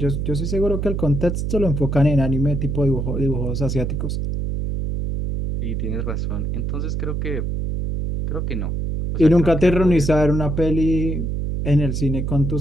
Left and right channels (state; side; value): noise; right; hum, 2 dB below the sound